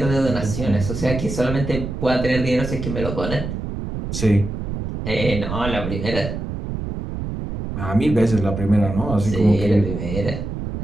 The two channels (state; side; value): noise; right; rumble, 5 dB below the sound